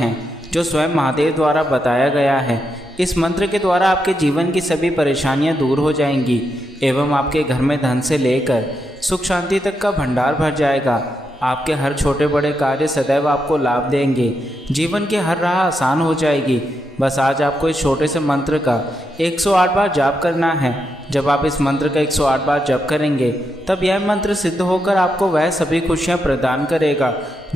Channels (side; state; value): both; normal; correlation 0.83